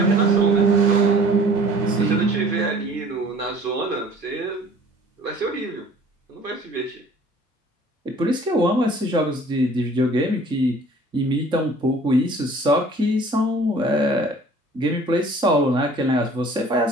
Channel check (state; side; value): normal; both; correlation 0.51